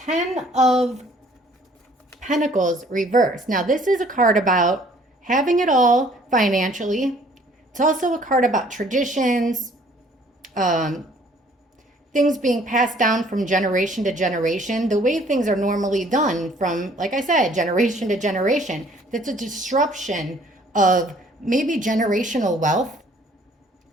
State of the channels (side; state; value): both; normal; correlation 0.58